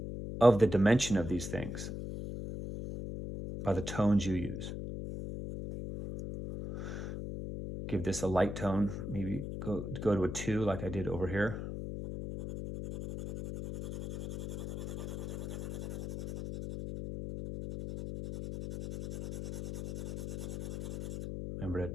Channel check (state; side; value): noise; left; hum, 7 dB below the sound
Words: of the dimension of these things by the tones you use. Give this a light tone, maybe go to a 2 like I did over here. Remember to